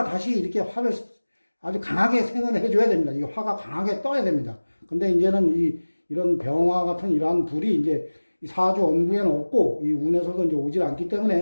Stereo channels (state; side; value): inverted; both; correlation -1.00